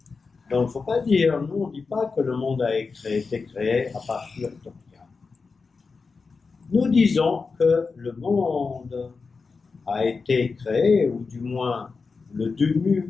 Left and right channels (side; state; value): right; quieter; 4.6 dB